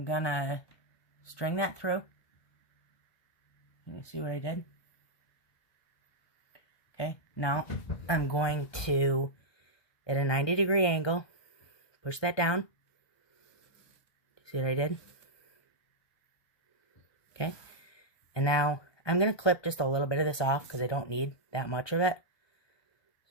going to string that through. You see what I did? Okay, now I'm going to, at a 90-degree angle, push that down. See what I did? Okay, and now I'm going to clip just a little bit of this off because I don't need that much of it.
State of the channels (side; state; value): right; late; 1.2 ms